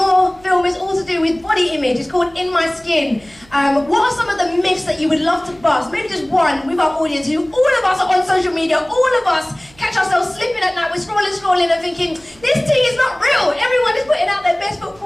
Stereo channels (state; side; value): noise; right; hum, 27 dB below the sound